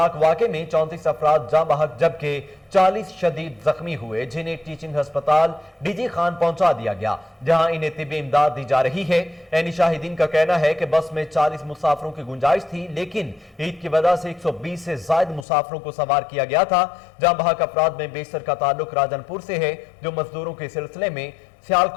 واقعے میں 34 افراد جاں بحق جبکہ 40 شدید زخمی ہوئے، جنہیں ٹیچنگ ہسپتال ڈی جی خان پہنچا دیا گیا جہاں انہیں طبی امداد دی جا رہی ہے۔ عینی شاہدین کا کہنا ہے کہ بس میں 40 مسافروں کی گنجائش تھی، لیکن عید کی وجہ سے 120 سے زائد مسافروں کو سوار کیا گیا تھا۔ جاں بحق افراد میں بیشتر کا تعلق راجن پور سے ہے، جو مزدوروں کے سلسلے میں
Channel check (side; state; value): right; drops out; at 15.5 s